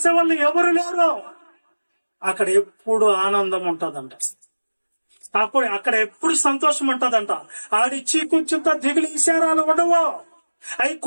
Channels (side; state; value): both; inverted; correlation -1.00